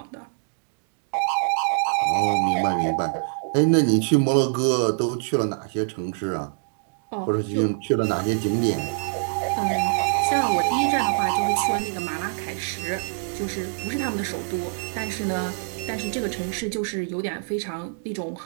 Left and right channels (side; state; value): left; silent; digital silence